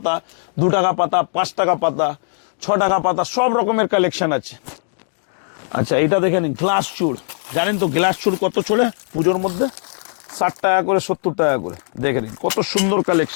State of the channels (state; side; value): silent; right; digital silence